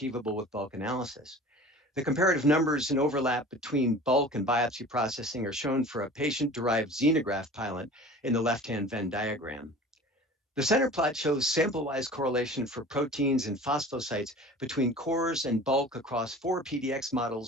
with bulk analysis. The comparative numbers and overlap between bulk and biopsy processing are shown for a patient-derived xenograft pilot in the left-hand Venn diagram. The center plot shows sample-wise correlation for proteins and phosphosites between cores and bulk across 4 PDX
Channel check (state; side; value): normal; both; correlation 0.41